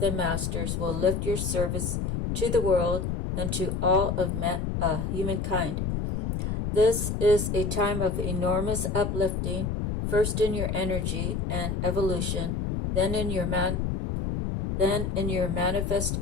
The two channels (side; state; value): left; noise; rumble, 1 dB below the sound